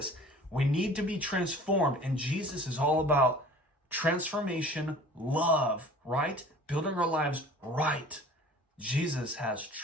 We need to be transformed. And Jesus is all about transformation, love, right? Building our lives right. Jesus has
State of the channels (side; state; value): both; normal; correlation 0.46